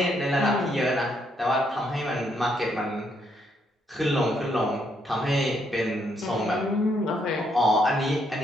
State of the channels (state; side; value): normal; both; correlation 0.74